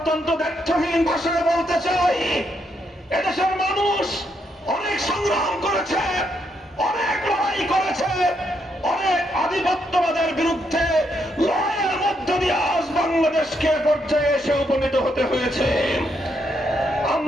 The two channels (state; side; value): normal; both; correlation 0.77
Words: দ্ব্যর্থহীন ভাষায় বলতে চাই, এদেশের মানুষ অনেক সংগ্রাম করেছে, অনেক লড়াই করেছে, অনেক আধিপত্যবাদের বিরুদ্ধে লড়াইয়ের মধ্য দিয়ে আজ বাংলাদেশকে পর্যায়ে এসে উপনীত হতে হয়েছে।